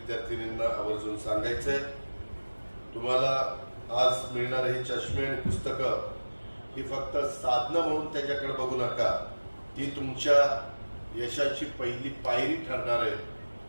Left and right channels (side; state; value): both; inverted; correlation -1.00